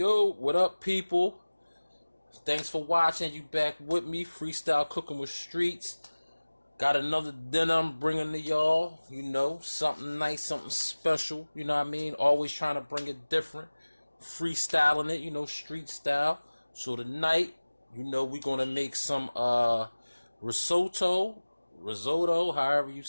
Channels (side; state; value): both; inverted; correlation -1.00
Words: what up, people? Thanks for watching. You back with me, Freestyle Cooking with Streetz. Got another dinner I'm bringing to y'all. You know, something nice, something special. You know what I mean? Always trying to bring it different. Freestyling it, you know, street style. So tonight, you know, we're going to make some risotto, however you